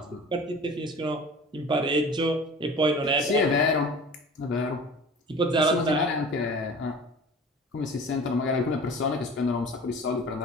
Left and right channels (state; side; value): normal; both; correlation 0.41